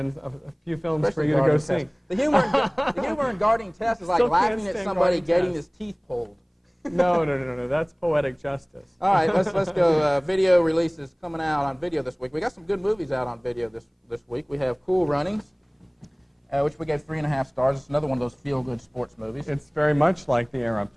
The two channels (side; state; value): both; identical; correlation 1.00